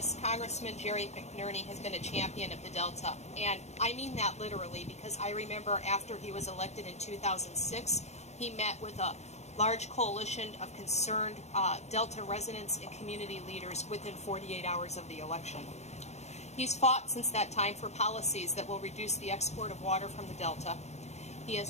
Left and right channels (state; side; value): late; right; 0.32 ms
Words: Congressman Jerry McNerney has been a champion of the Delta. And I mean that literally, because I remember after he was elected in 2006, he met with a large coalition of concerned Delta residents and community leaders within 48 hours of the election. He's fought since that time for policies that will reduce the export of water from the Delta. He